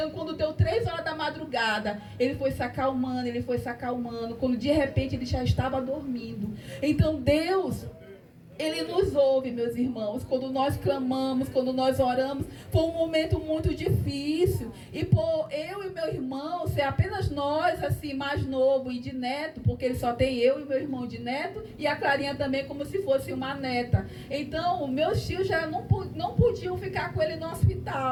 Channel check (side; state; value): both; identical; correlation 1.00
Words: quando deu 3 horas da madrugada, ele foi se acalmando, quando de repente ele já estava dormindo. Então Deus, ele nos ouve, meus irmãos, quando nós clamamos, quando nós oramos. Foi um momento muito difícil, e por eu e meu irmão ser apenas nós, assim, mais novo e de neto, porque ele só tem eu e meu irmão de neto, e a Clarinha também como se fosse uma neta. Então meus tios já não podiam ficar com ele no